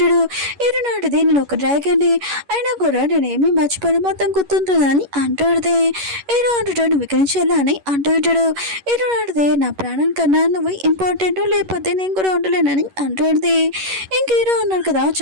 హీరో నాటిది నేను ఒక డ్రాగన్ అయినా కూడా నేనేమి మర్చిపోయి మొత్తం గుర్తుంటుందని అంటాడుది. హీరో అంటాడు నువ్వు ఇక్కడి నుంచి వెళ్ళని అంటూ ఉంటాడు. హీరో నాటిది నా ప్రాణం కన్నా నువ్వు ఇంపార్టెంట్ లేకపోతే నేను కూడా ఉండలేనని అంటాడుది. ఇంక హీరో అన్నాడు కదా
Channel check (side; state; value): left; late; 11 ms